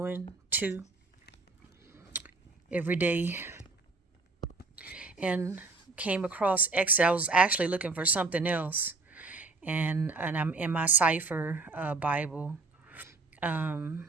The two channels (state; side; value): quieter; left; 3.7 dB